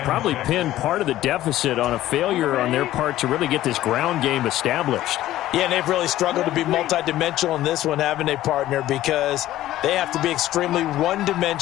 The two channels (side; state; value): right; quieter; 14.4 dB